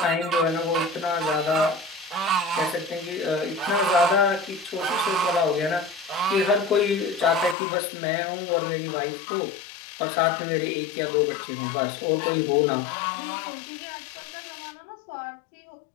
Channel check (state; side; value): drops out; right; at 7.6 s